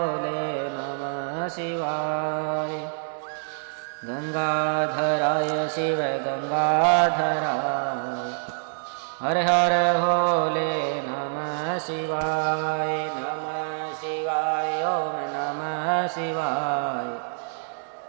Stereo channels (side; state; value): left; silent; 61 dB below the other